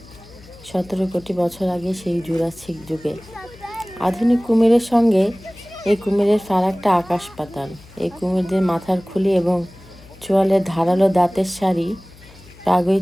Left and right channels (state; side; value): noise; left; hum, 23 dB below the sound